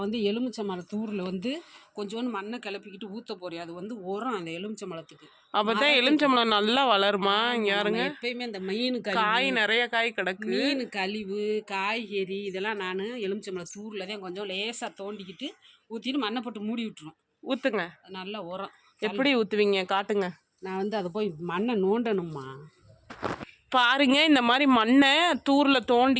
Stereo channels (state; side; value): identical; both; correlation 1.00